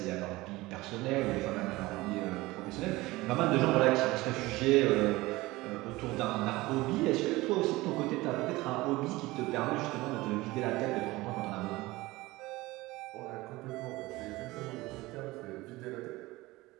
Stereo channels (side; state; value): left; quieter; 20.0 dB